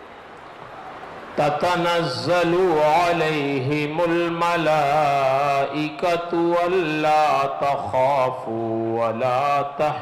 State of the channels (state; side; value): identical; both; correlation 1.00